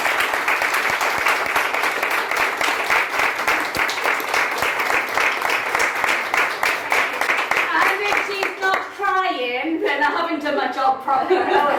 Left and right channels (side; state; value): both; identical; correlation 1.00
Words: Then I haven't done my job properly.